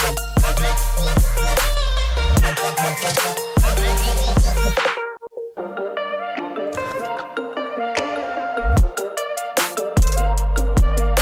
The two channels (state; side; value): identical; both; correlation 1.00